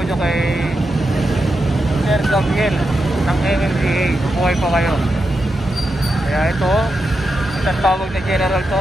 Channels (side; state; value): both; normal; correlation 0.87